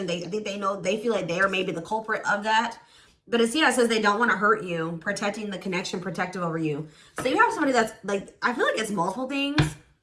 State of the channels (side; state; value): both; identical; correlation 1.00